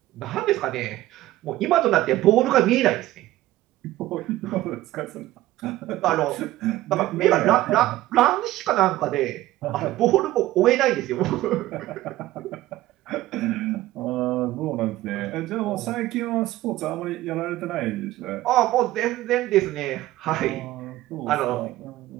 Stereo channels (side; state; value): left; quieter; 16.1 dB